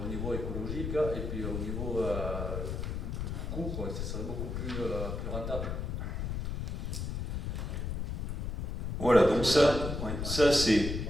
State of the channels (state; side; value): noise; left; rumble, 3 dB below the sound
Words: au niveau écologique et puis au niveau coût, ça serait beaucoup plus rentable. Voilà, donc ça c'est